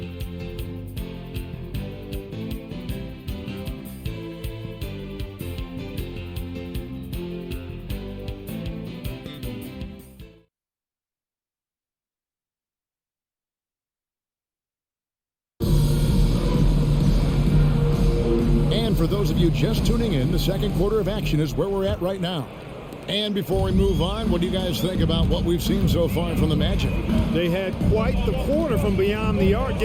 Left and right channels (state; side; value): identical; both; correlation 1.00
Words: For those of you just tuning in, the second quarter of action is where we're at right now. And before we move on, what do you guys think about what we've seen so far from the Magic? They had quite the quarter from beyond the arc,